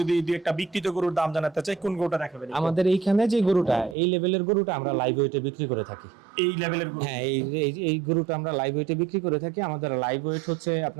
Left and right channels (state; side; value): drops out; left; at 4.0 s